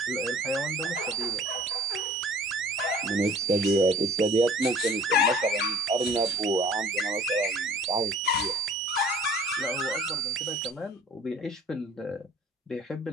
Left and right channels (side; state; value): both; normal; correlation 0.50